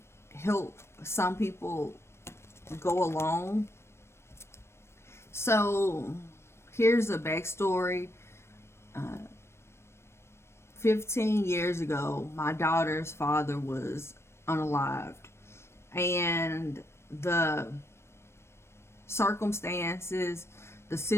help some people go along. So, here's a backstory. 15 years ago, my daughter's father was unalived, and the circumstances, the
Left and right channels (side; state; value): right; late; 0.13 ms